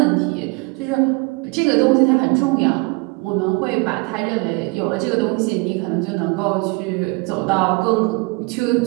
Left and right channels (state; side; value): quieter; left; 27.4 dB